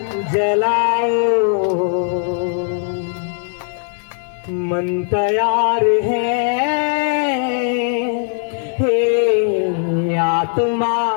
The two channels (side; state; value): right; silent; 59 dB below the other